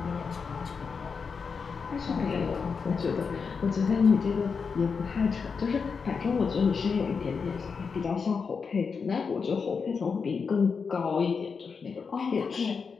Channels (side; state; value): right; quieter; 5.5 dB